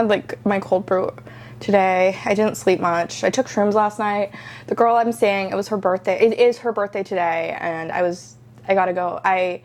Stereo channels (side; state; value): both; identical; correlation 1.00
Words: like my cold brew today. I didn't sleep much. I took shrooms last night. The girl I'm seeing, it was her birthday. It is her birthday today, and I gotta go. I